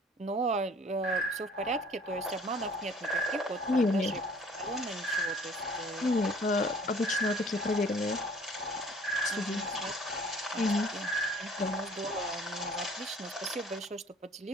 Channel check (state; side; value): normal; both; correlation 0.53